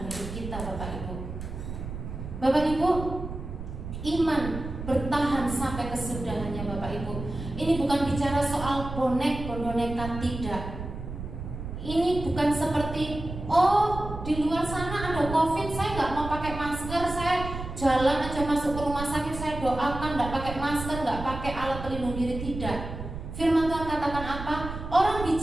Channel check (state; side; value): noise; right; rumble, 8 dB below the sound